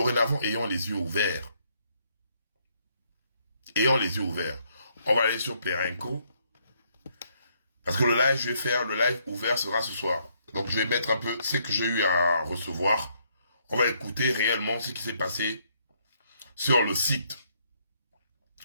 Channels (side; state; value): both; inverted; correlation -0.71